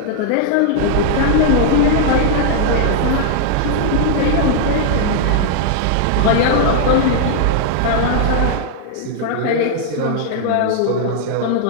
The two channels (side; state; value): both; different; correlation -0.01